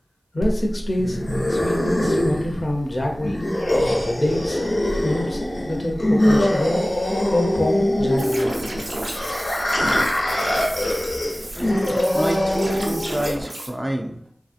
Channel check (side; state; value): both; normal; correlation 0.97